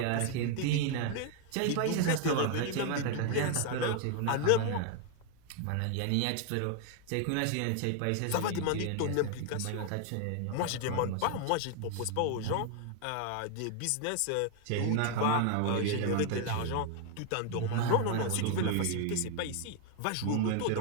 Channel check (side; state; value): both; different; correlation 0.00